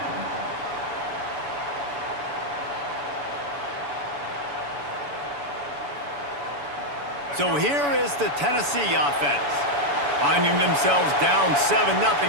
So here is the Tennessee offense. Finding themselves down 7-0,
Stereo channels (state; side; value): late; left; 7.0 ms